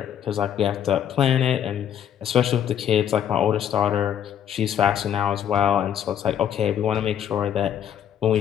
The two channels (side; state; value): right; quieter; 9.6 dB